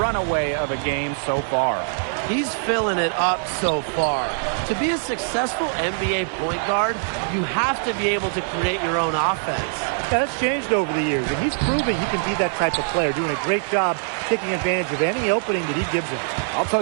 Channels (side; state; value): left; silent; digital silence